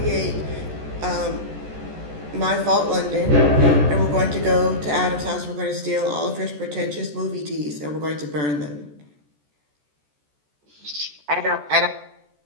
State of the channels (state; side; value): late; left; 14 ms